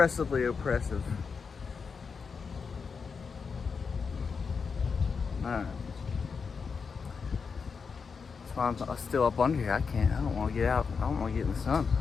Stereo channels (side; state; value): right; quieter; 5.5 dB